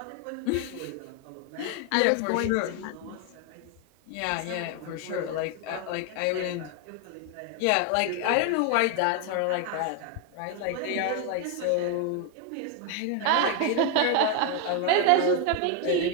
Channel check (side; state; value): both; different; correlation 0.01